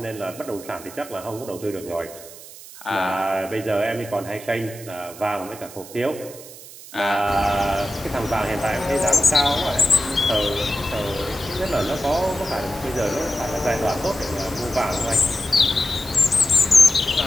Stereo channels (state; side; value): noise; right; hiss, 16 dB below the sound